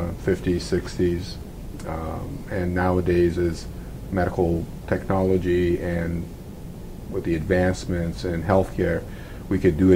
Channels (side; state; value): both; identical; correlation 1.00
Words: 60s, and nowadays as medical technology and with the advancements in healthcare, we could do